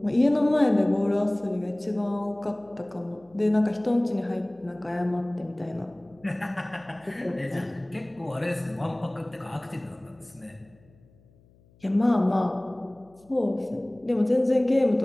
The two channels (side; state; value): left; noise; hum, 30 dB below the sound